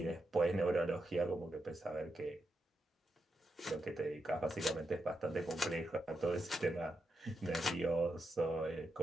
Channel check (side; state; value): both; normal; correlation 0.86